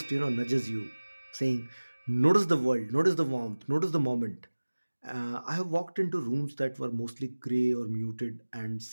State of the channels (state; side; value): inverted; both; correlation -1.00